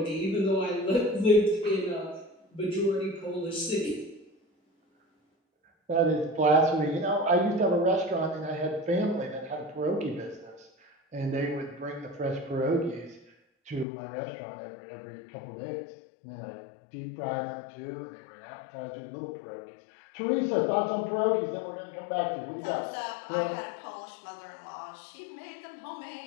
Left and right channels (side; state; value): right; drops out; at 13.9 s